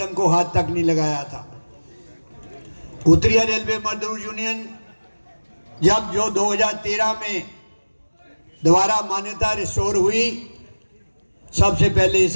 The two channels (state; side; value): inverted; both; correlation -1.00